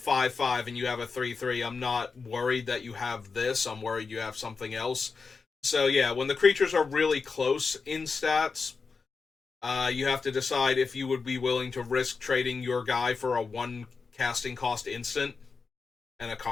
and you have a 3/3, I'm not worried that you have this. I'm worried you have something else. So yeah, when the creatures are really close in stats, you have to decide if you would be willing to risk trading your guy for a 1 casting cost instant and a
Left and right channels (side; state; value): right; quieter; 4.8 dB